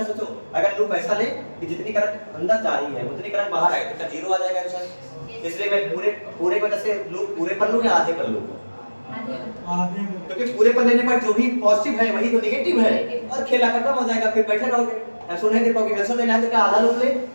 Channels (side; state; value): both; inverted; correlation -1.00